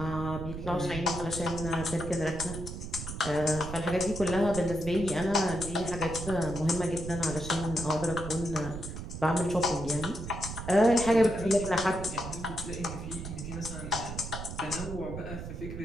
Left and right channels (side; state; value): right; noise; rumble, 8 dB below the sound